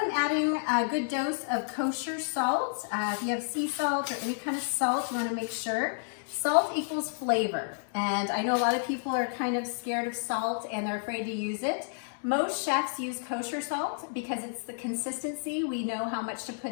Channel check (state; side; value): silent; right; digital silence